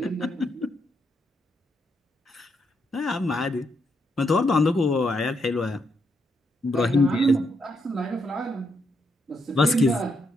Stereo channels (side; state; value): both; normal; correlation 0.78